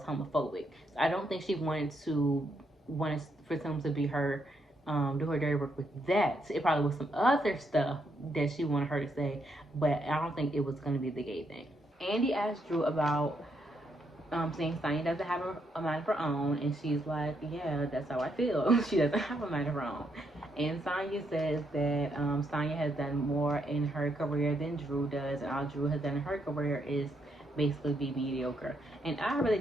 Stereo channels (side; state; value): both; normal; correlation 0.77